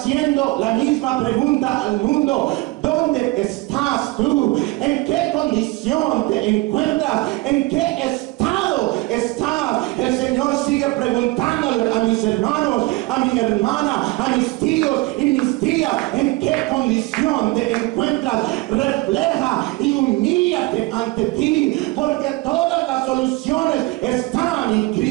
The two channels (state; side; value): quieter; left; 21.7 dB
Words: la misma pregunta al mundo: ¿dónde estás tú? ¿En qué condición te encuentras? ¿En qué estado estás? El Señor sigue preguntándole a mis hermanos, a mi hermana, a mis tíos y mis tías: ¿en qué condición te encuentras? Refleja y humíllate ante ti, porque todas las soluciones están en